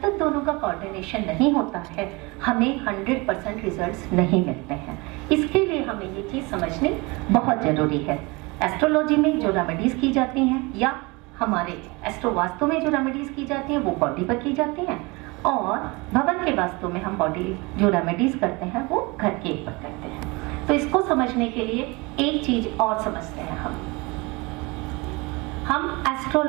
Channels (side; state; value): left; quieter; 25.8 dB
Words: तक दोनों का कोऑर्डिनेशन नहीं होता है, हमें 100% रिजल्ट्स नहीं मिलते हैं। इसके लिए हमें ये चीज समझनी बहुत जरूरी है। एस्ट्रोलॉजी में जो रेमेडीज की जाती हैं या हमारे एस्ट्रो वास्तु में जो रेमेडीज की जाती हैं वो बॉडी पर की जाती हैं, और भवन के वास्तु में हम बॉडी जो रेमेडीज करते हैं वो घर के ऊपर करते हैं। तो इसको समझने के लिए एक चीज और समझते हैं। हम